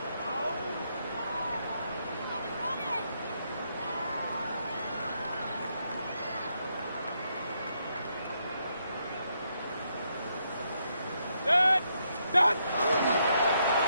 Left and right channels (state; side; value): inverted; both; correlation -0.77